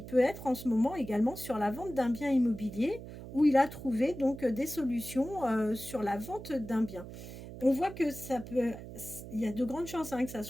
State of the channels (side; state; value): right; noise; hum, 12 dB below the sound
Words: peut être en ce moment également sur la vente d'un bien immobilier où il a trouvé donc des solutions sur la vente d'un bien. On voit que il y a de grandes chances que ça